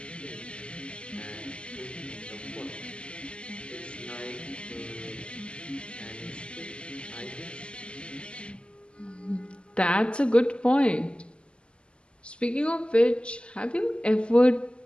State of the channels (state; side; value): late; right; 0.052 ms